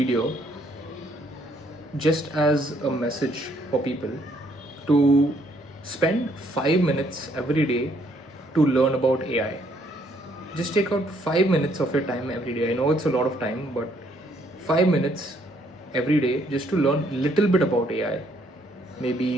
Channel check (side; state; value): both; normal; correlation 0.68